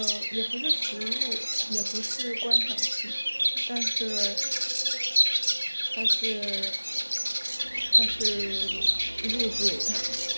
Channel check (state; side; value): inverted; both; correlation -1.00